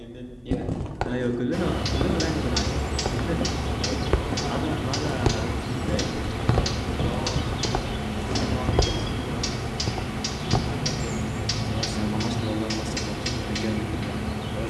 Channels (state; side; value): identical; both; correlation 1.00